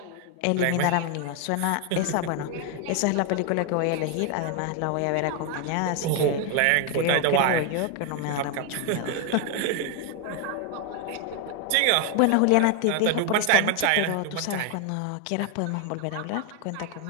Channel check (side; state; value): both; different; correlation 0.01